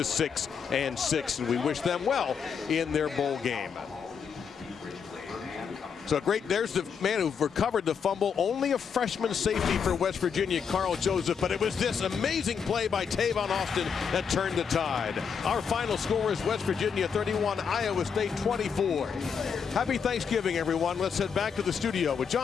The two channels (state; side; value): quieter; right; 6.6 dB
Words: and we wish them well in their bowl game. So great, there's the man who recovered the fumble. Only a freshman safety for West Virginia, Carl Joseph, but it was this amazing play by Tavon Austin that turned the tide. Our final score is West Virginia 31, Iowa State 24. Happy Thanksgiving, everyone. Let's head back to the studio with